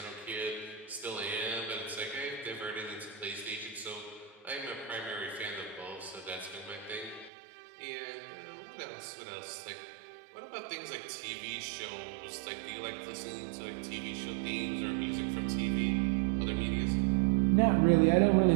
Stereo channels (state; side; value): drops out; left; at 7.3 s